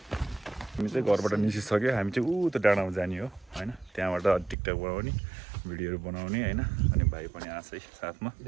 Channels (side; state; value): left; drops out; at 4.5 s